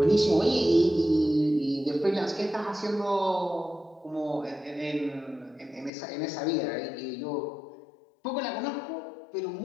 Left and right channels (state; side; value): drops out; right; at 5.9 s